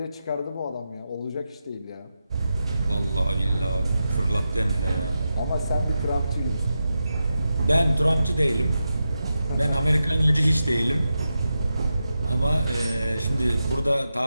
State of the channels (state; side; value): inverted; both; correlation -0.89